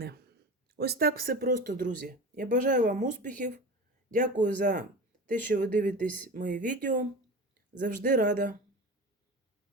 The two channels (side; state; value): both; normal; correlation 0.31